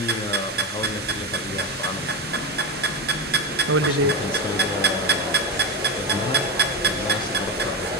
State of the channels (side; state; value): both; normal; correlation 0.15